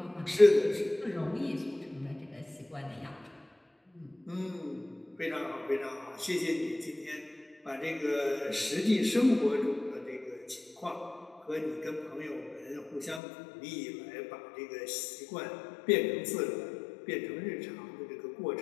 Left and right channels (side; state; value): right; drops out; at 13.2 s